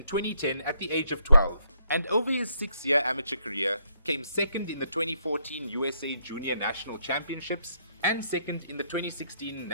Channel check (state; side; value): inverted; both; correlation -0.73